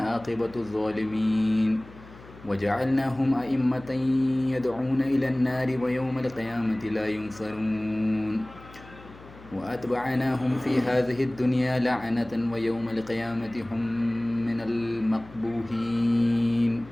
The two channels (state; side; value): noise; left; hum, 20 dB below the sound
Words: عاقبة الظالمين وجعلناهم أئمة يدعون إلى النار ويوم القيامة لا ينصرون وأتبعناهم في هذه الدنيا لعنة ويوم القيامة هم من المقبوحين